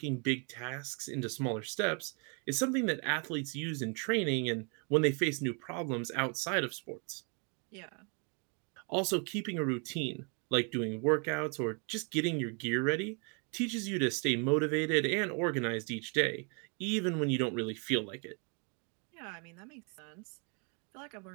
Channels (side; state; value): left; quieter; 36.6 dB